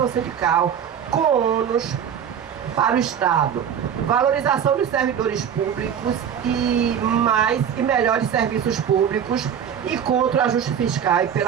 sindical com ônus para o Estado. Valorização dos servidores públicos e mais e melhores serviços públicos e contra o ajuste fiscal e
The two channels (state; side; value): quieter; left; 8.5 dB